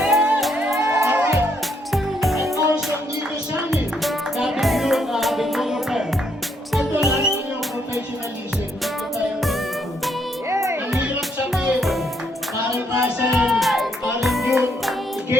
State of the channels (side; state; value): both; normal; correlation 0.73